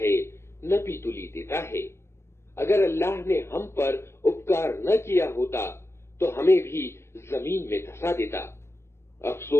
नपी तुली देता है। अगर अल्लाह ने हम पर उपकार न किया होता तो हमें भी जमीन में धंसा देता।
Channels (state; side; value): late; right; 0.13 ms